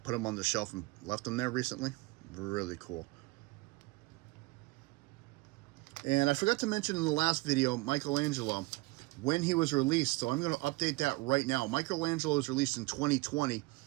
them on the shelf and left them there recently. Really cool. And I forgot to mention in the last video, Michelangelo, when he was released. So I'm going to update that right now. Michelangelo was released in 2020.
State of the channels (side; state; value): left; quieter; 22.7 dB